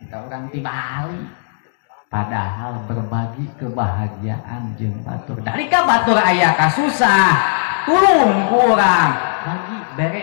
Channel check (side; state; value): right; silent; digital silence